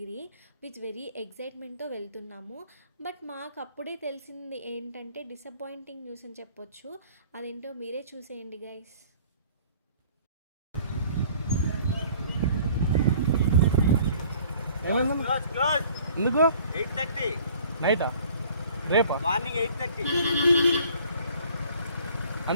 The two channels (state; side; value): inverted; both; correlation -0.53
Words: With very ఎగ్జైట్మెంట్తో వెళ్తున్నాము. బట్ మాకు అప్పుడే తెలిసింది ఏంటంటే డిసప్పాయింటింగ్ న్యూస్ అని చెప్పొచ్చు. అదేంటో మీరే చూసేయండి గైస్. ఎందుకు 8:30 నైటా రేపా మార్నింగ్ 8:30